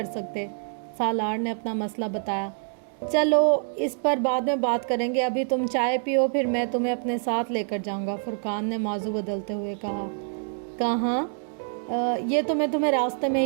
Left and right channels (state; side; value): silent; left; 61 dB below the other